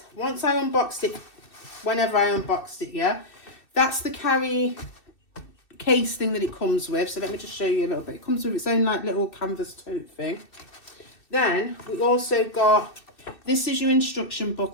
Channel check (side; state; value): right; late; 2.6 ms